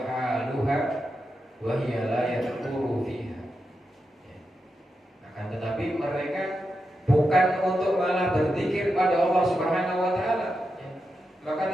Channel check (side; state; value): both; normal; correlation 0.87